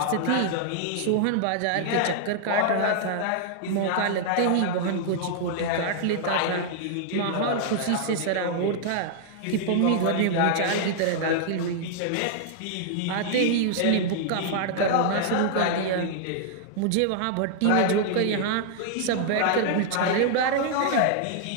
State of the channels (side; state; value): both; different; correlation -0.01